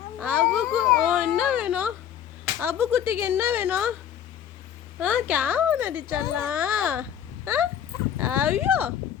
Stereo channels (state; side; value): quieter; right; 9.7 dB